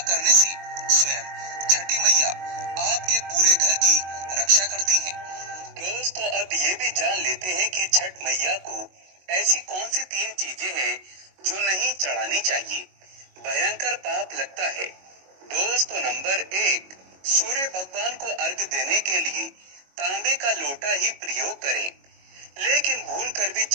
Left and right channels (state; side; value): late; left; 22 ms